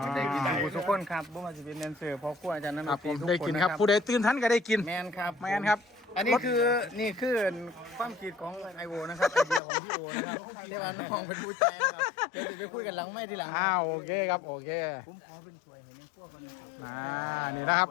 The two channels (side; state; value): right; drops out; at 9.6 s